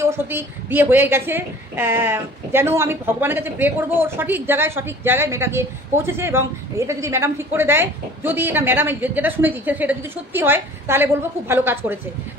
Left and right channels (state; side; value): normal; both; correlation 0.47